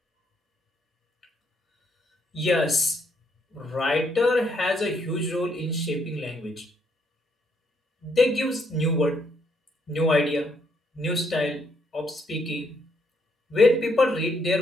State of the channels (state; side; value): normal; both; correlation 0.73